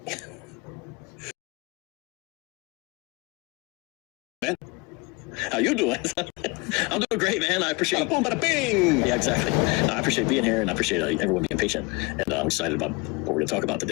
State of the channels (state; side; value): quieter; right; 26.3 dB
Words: man, how you doing? I'm doing great, man. I appreciate it. Boom, bada bing. Yeah, exactly. I appreciate being here, and I appreciate everyone being patient. And I'm excited about what we're going to talk about